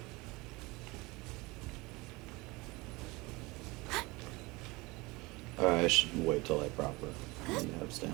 Alright, I should wait till I proper have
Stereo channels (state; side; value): quieter; left; 23.4 dB